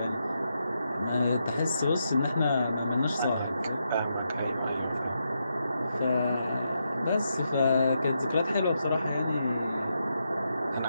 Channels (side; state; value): both; inverted; correlation -0.83